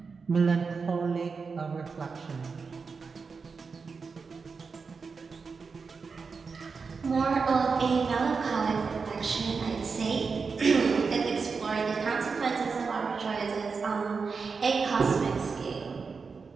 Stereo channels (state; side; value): quieter; left; 5.0 dB